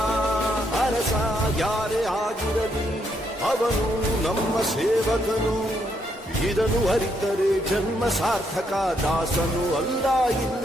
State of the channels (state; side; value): normal; both; correlation 0.75